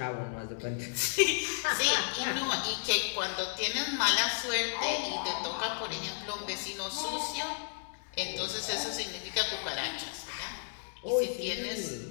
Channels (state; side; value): silent; right; digital silence